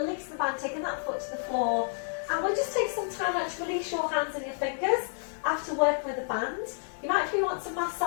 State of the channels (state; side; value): silent; right; digital silence